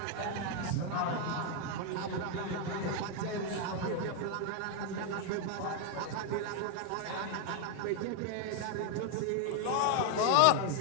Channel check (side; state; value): both; different; correlation 0.01